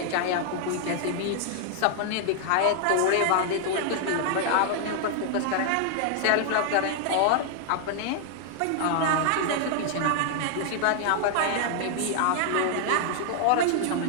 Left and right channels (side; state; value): both; different; correlation -0.01